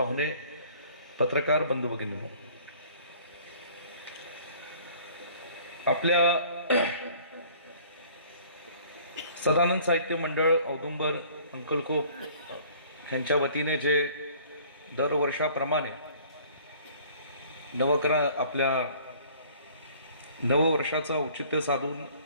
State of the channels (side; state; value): both; inverted; correlation -0.53